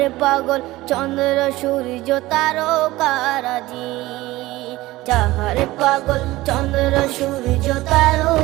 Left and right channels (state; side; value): quieter; left; 18.4 dB